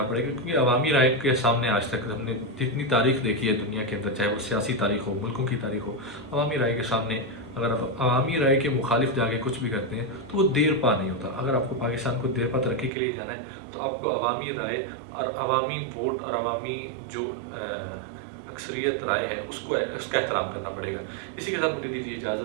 پڑے گا، کیونکہ عوامی رائے کے سامنے آج تک ہم نے جتنی تاریخ دیکھی ہے دنیا کے اندر، چاہے وہ سیاسی تاریخ ہو، ملکوں کی تاریخ ہو، عوامی رائے کے سامنے اگر آپ عوامی رائے کے مخالف جا کے کچھ بھی کرتے ہیں تو وہ دیر پا نہیں ہوتا۔ اگر آپ کو پاکستان کو دیر پا ترقی کے لیے جانا ہے تو آپ کو عوامی رائے اور عوامی ووٹ اور عوامی جو اکثریت رائے ہے اس کا احترام کرنا پڑے گا۔ اسی کے ساتھ مجھے دیجیے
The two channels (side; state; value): left; drops out; at 12.9 s